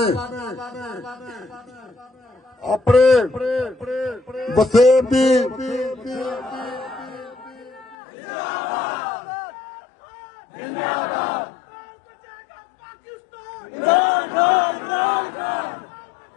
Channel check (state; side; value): drops out; right; at 8.0 s